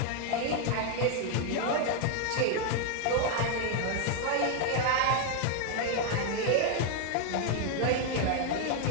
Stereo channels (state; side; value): different; both; correlation 0.01